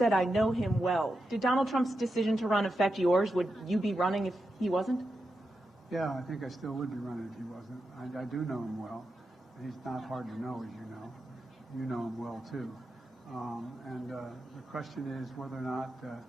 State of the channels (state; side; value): normal; both; correlation 0.88